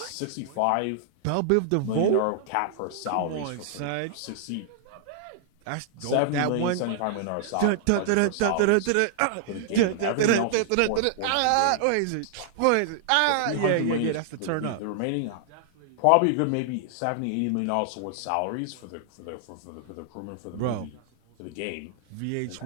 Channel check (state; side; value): different; both; correlation -0.01